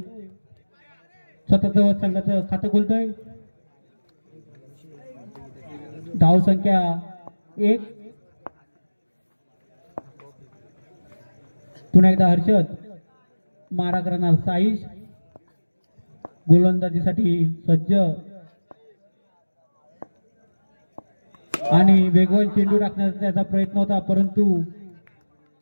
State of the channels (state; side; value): inverted; both; correlation -1.00